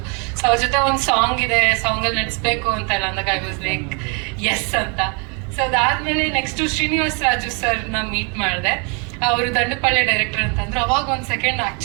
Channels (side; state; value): left; quieter; 35.0 dB